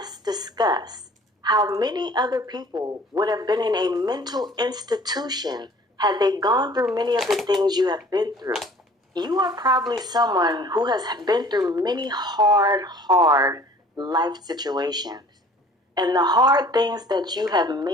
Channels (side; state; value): both; normal; correlation 0.50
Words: discuss how many other people would have been in a mental institution had they gone through many of the things you have been through. You are probably someone who has been through many hard life situations. And the hard things that you have